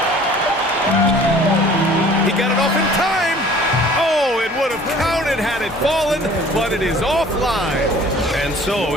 He got it off in time. Oh, it would have counted had it fallen, but it is offline. And so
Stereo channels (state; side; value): normal; both; correlation 0.50